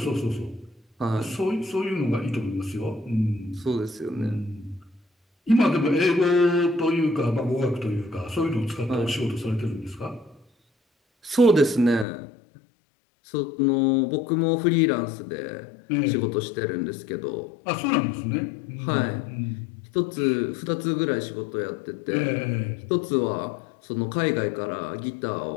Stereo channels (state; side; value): drops out; right; at 12.1 s